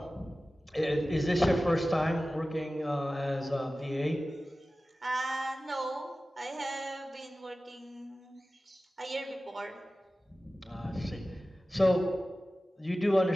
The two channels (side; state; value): both; normal; correlation 0.96